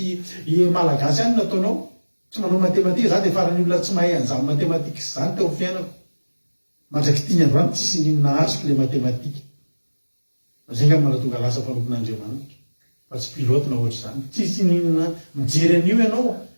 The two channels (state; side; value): inverted; both; correlation -1.00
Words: malagasy any nataonao tsy manao matematika za dia farany olona tsy mahay an'izany matematika zany teo fiainako mandraky tiany androany tsisy ninona azoko le matematika zay nga manatonga lasa mpanompon'Andriamanitra fa tsy pilote na ohatra zany tsisy ninona mijery an'io ianao